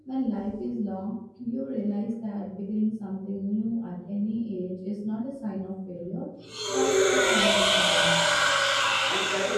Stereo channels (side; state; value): both; identical; correlation 1.00